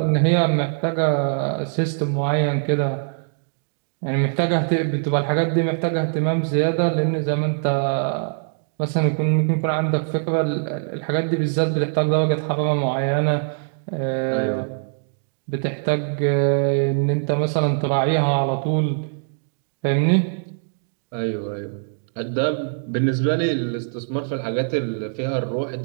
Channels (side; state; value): left; silent; digital silence